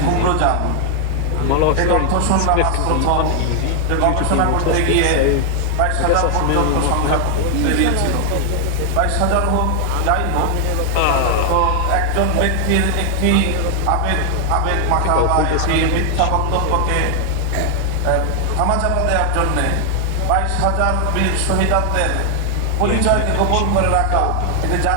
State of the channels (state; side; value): different; both; correlation 0.00